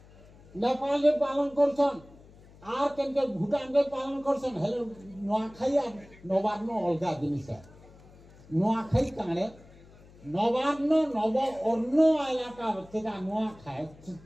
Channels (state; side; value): noise; left; hum, 23 dB below the sound